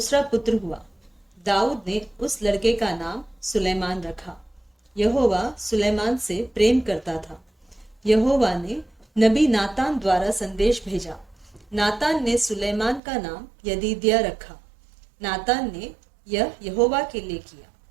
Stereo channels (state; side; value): drops out; left; at 13.0 s